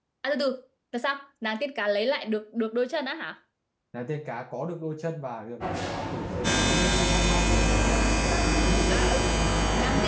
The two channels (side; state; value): both; identical; correlation 1.00